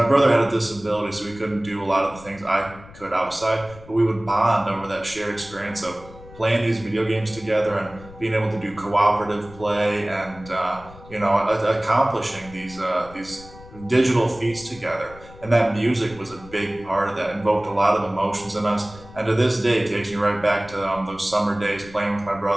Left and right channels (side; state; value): left; noise; rumble, 19 dB below the sound